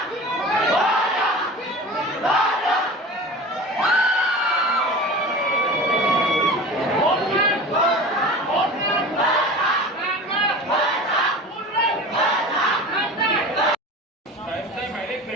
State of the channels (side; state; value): both; normal; correlation 0.35